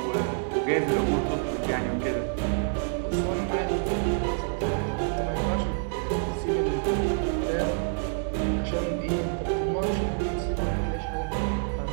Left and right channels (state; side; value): silent; left; 60 dB below the other